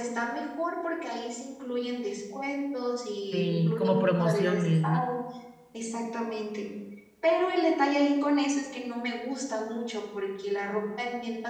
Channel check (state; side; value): identical; both; correlation 1.00